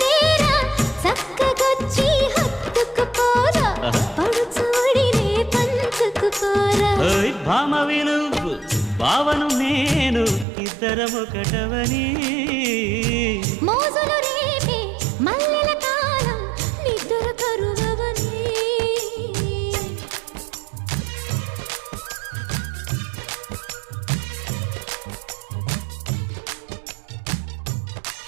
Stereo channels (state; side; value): drops out; left; at 10.5 s